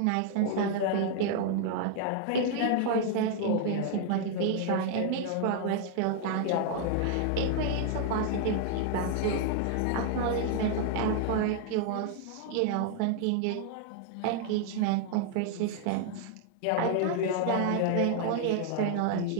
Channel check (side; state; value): both; different; correlation 0.00